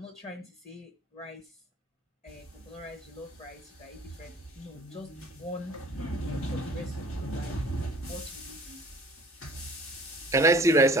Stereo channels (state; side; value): normal; both; correlation 0.50